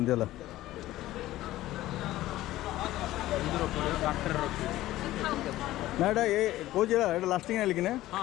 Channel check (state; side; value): quieter; right; 15.6 dB